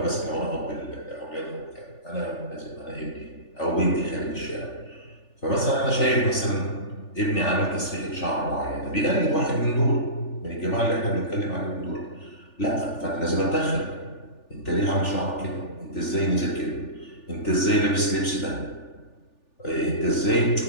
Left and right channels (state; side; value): late; right; 3.4 ms